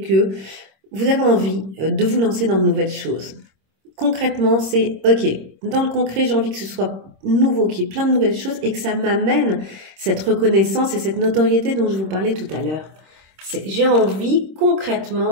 vous avez envie de vous lancer dans de nouvelles choses. Concrètement, c'est ok, dans le concret, j'ai envie que ce soit nouveau, qu'il y ait plein de nouvelles choses et que ça m'amène cette reconnaissance et cette notoriété dont je vous parlais tout à l'heure. J'ai envie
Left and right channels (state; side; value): late; left; 26 ms